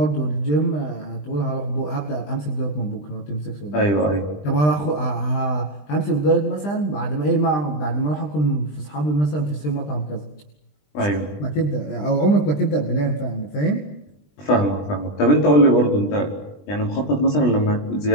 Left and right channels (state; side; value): late; right; 20 ms